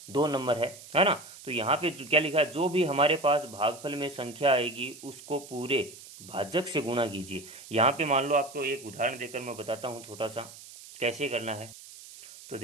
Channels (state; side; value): noise; right; hiss, 17 dB below the sound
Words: 2 नंबर है ना। तो यहाँ पे क्या लिखा है? जो भी हमारे पास भागफल में संख्या आएगी उसको पूरे भाजक से गुणा कीजिए। यहाँ पे मान लो आपको एक उदाहरण देकर मैं बताता हूँ छोटा सा कैसे करना है। तो